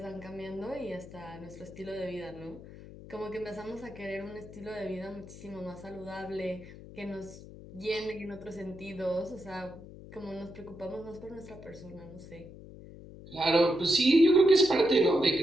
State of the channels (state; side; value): noise; left; hum, 16 dB below the sound